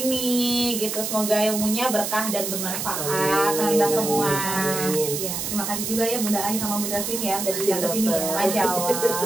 ini gitu. Semoga ilmunya berkah dan bermanfaat untuk kita semua. Ya, terima kasih juga ya Bunda Ai sama Bunda Queen ya udah datang ke sini ya. Masya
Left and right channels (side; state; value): right; noise; hiss, 3 dB below the sound